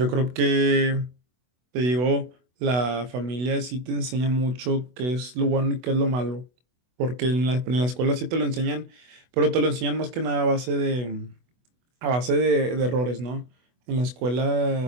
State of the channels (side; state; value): left; late; 24 ms